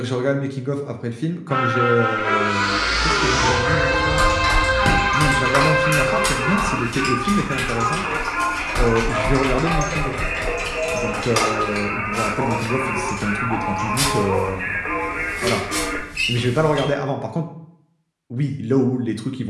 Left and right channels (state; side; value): identical; both; correlation 1.00